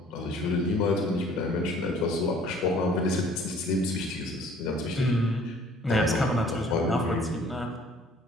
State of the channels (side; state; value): both; normal; correlation 0.55